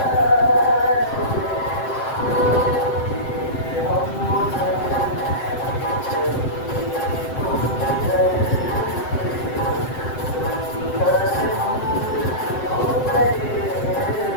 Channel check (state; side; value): late; right; 7.7 ms